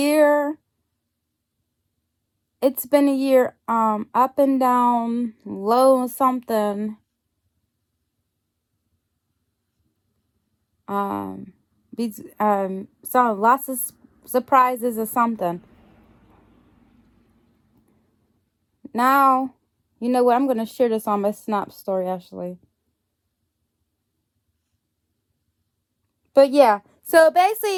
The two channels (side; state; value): both; identical; correlation 1.00